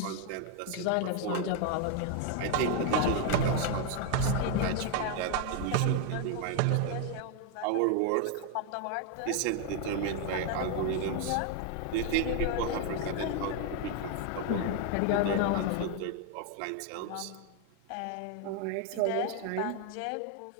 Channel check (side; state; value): both; different; correlation 0.01